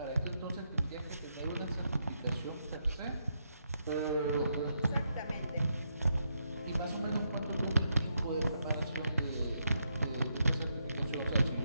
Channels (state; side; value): inverted; both; correlation -0.80